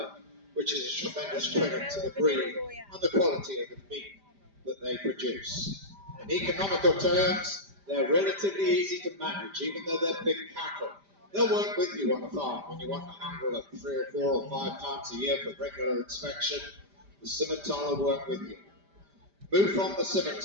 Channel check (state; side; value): late; left; 5.0 ms